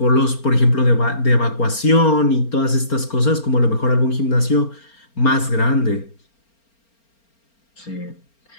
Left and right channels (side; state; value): right; late; 4.4 ms